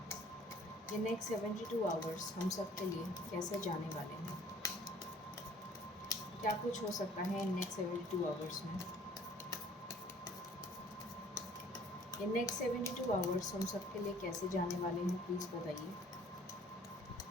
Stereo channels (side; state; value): both; normal; correlation 0.54